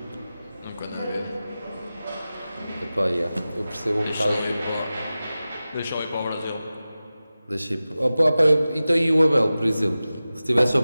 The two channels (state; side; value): inverted; both; correlation -0.96